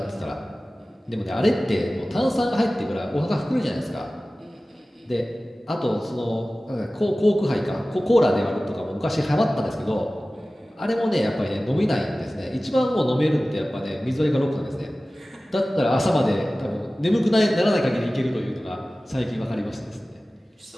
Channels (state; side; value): normal; both; correlation 0.97